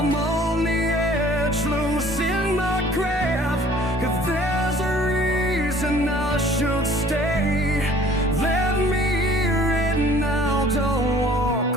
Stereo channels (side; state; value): both; normal; correlation 0.53